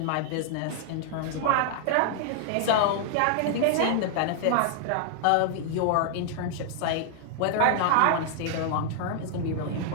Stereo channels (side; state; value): both; different; correlation -0.01